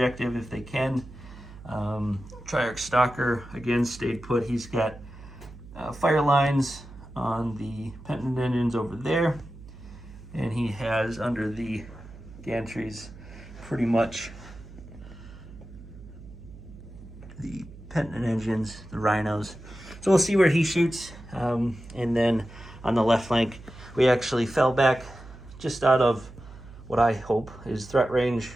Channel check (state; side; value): noise; right; hum, 17 dB below the sound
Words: if they can. Triarch Stalker again stayed put. He's got fire lines on the penitent engines over there, and he has under the gantries pretty much the penitent engines, the rhinos. So we'll see where he shoots. And then on the left flank, we actually fell back just out of what I hope is threat range